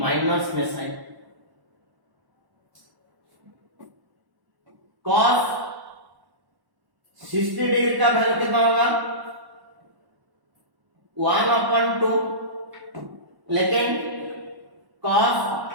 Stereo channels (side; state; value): left; late; 1.1 ms